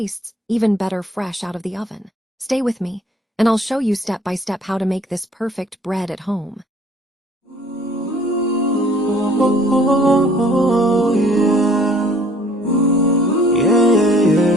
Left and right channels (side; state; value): both; normal; correlation 0.56